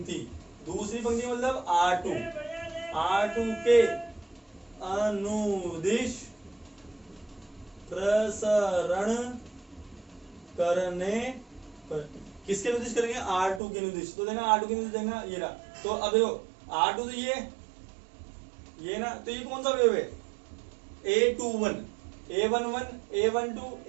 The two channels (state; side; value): drops out; left; at 13.6 s